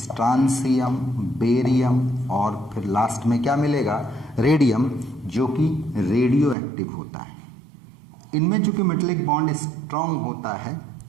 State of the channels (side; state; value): left; drops out; at 6.6 s